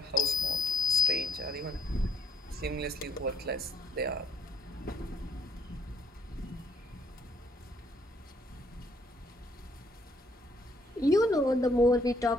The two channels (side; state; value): both; normal; correlation 0.67